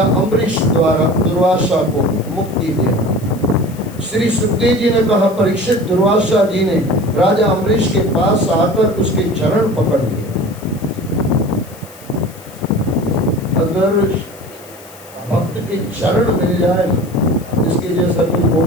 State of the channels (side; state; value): left; noise; hiss, 22 dB below the sound